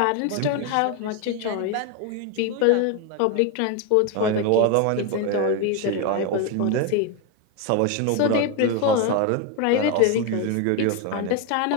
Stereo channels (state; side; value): different; both; correlation 0.02